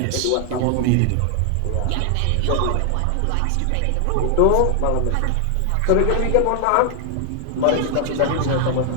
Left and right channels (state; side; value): different; both; correlation 0.00